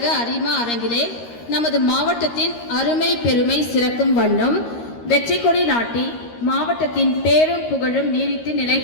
அரிமா அரங்கிலே நமது மாவட்டத்தின் அருமை பெருமை சிறக்கும் வண்ணம் வெற்றி கொடி நாட்டி மாவட்டத்தின் பேரும் புகழும் நீடித்து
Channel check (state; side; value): late; right; 13 ms